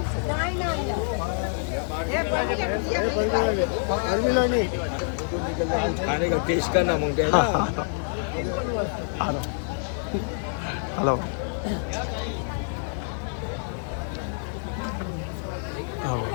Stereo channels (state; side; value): silent; right; digital silence